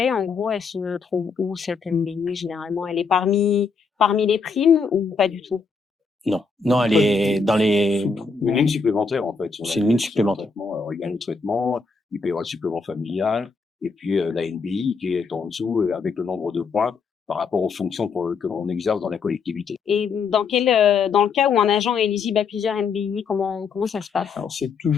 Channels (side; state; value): right; quieter; 4.9 dB